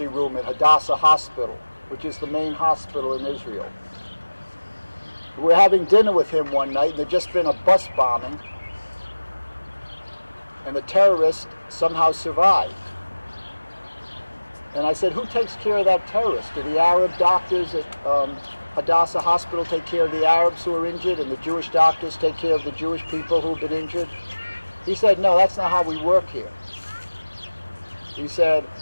room at Hadassah Hospital, which is the main hospital in Israel. We were having dinner with him one night, and there'd just been a bus bombing, and the terrorist somehow survived. And I said, who takes care of that terrorist? Do the Arab doctors at Hadassah Hospital take care of the Arabs who are injured, and the Jewish doctors take care of the Jewish people who've been injured? He said, no, that's not how we work here. He said,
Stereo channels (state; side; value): inverted; both; correlation -1.00